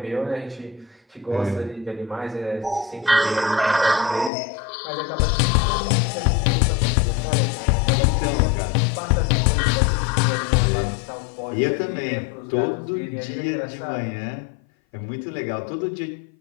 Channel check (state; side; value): drops out; right; at 4.3 s